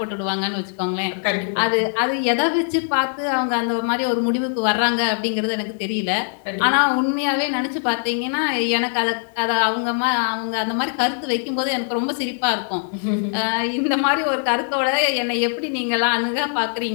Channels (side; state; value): right; silent; 65 dB below the other